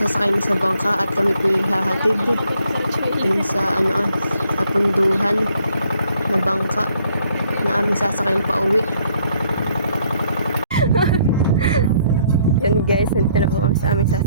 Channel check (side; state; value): both; inverted; correlation -0.67